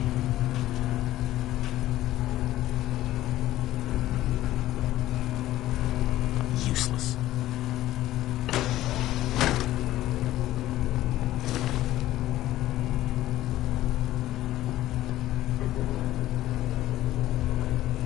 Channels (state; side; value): quieter; right; 14.9 dB